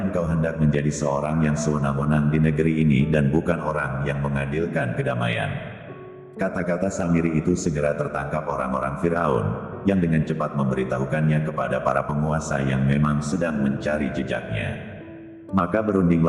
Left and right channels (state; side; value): identical; both; correlation 1.00